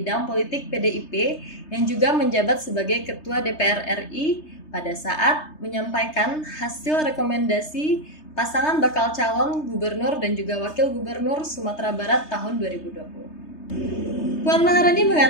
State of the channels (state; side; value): late; right; 3.3 ms